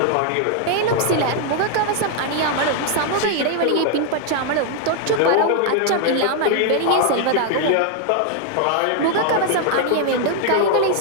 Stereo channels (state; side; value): different; both; correlation 0.00